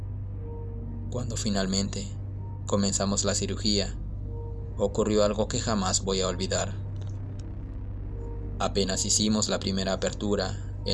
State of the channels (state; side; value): identical; both; correlation 1.00